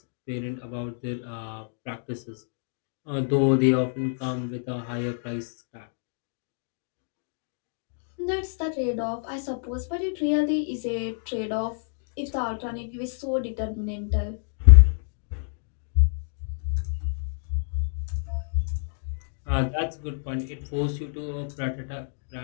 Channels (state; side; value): silent; right; digital silence